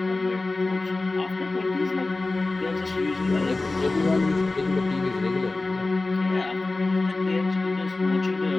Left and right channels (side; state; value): right; quieter; 3.2 dB